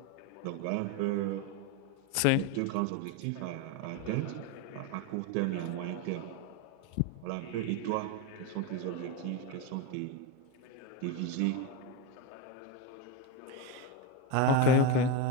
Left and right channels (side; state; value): both; different; correlation 0.04